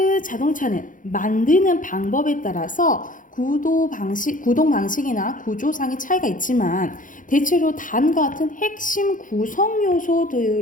자동차는 만드는 방법에 따라서 구동 방식이나 구조상의 차이가 있지만 대체로 다음과 같은 핵심 구성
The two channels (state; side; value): late; right; 0.38 ms